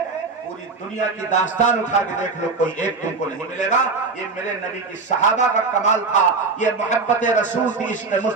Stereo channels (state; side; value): quieter; left; 4.2 dB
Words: پوری دنیا کی داستان اٹھا کے دیکھ لو کوئی ایک تم کو نہیں ملے گا۔ یہ میرے نبی کی صحابہ کا کمال تھا، یہ محبت رسول تھی، عشق